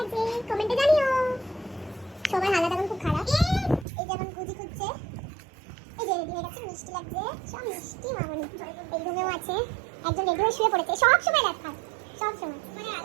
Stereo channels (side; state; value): left; drops out; at 3.9 s